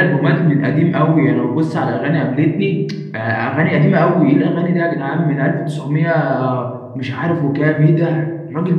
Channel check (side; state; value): both; identical; correlation 1.00